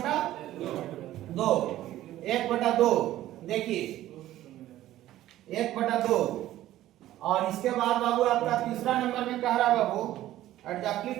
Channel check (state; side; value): quieter; left; 14.1 dB